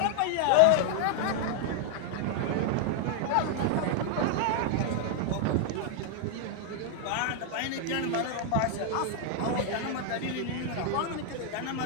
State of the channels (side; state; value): both; different; correlation 0.00